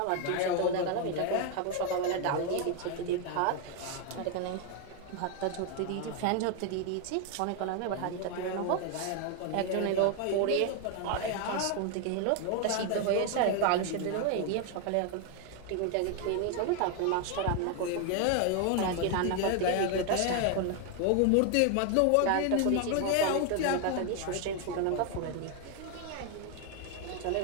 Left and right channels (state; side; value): different; both; correlation 0.01